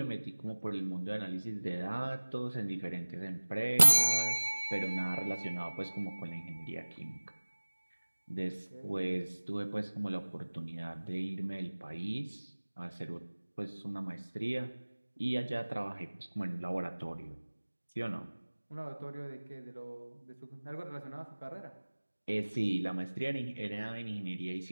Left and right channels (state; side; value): inverted; both; correlation -1.00